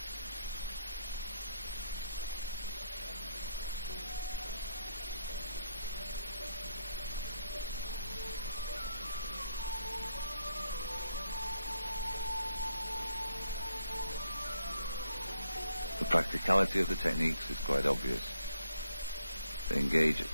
The practicality of the techniques is quite obvious. They engage at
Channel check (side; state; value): both; inverted; correlation -0.75